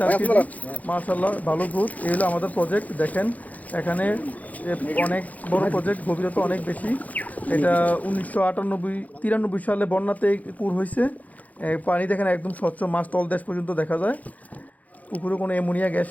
কেজি। মাশাল্লাহ ভালো গ্রোথ। এই হলো আমাদের প্রজেক্ট। দেখেন এখানে অনেক বড় প্রজেক্ট, গভীরতা অনেক বেশি। এটা 1993 সালে বন্যাতে পুর হয়েছে। পানি দেখেন একদম স্বচ্ছ, মাছ তলদেশ পর্যন্ত দেখা যায়। পুকুরে কোনো অ্যামোনিয়া গ্যাস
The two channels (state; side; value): late; right; 0.075 ms